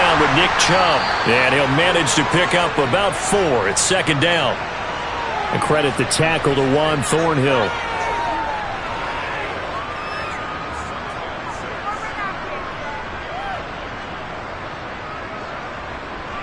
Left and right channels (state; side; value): identical; both; correlation 1.00